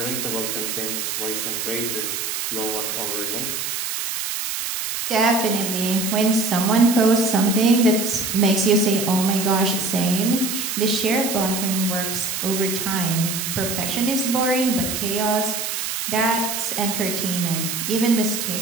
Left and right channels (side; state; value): right; noise; hiss, 3 dB below the sound